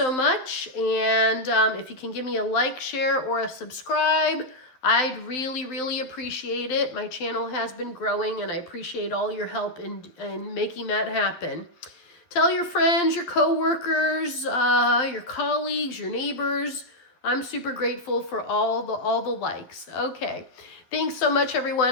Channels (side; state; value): right; late; 12 ms